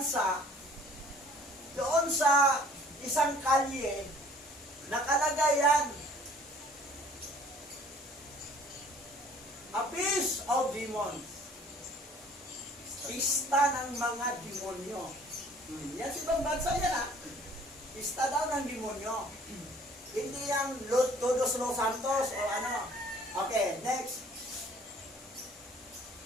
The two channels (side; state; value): both; normal; correlation 0.54